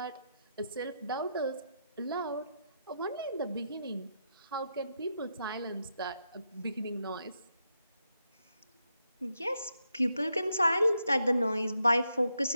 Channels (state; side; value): inverted; both; correlation -0.83